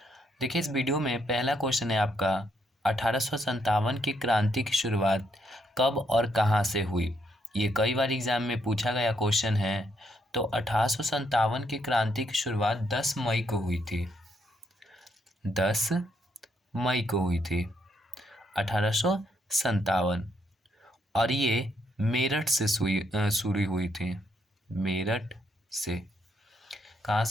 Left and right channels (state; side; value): normal; both; correlation 0.75